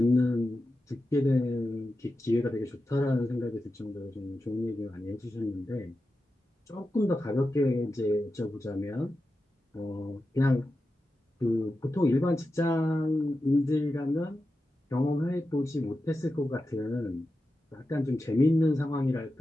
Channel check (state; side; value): normal; both; correlation 0.91